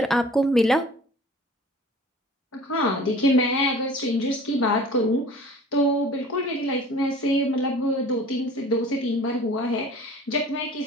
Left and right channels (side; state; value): both; normal; correlation 0.45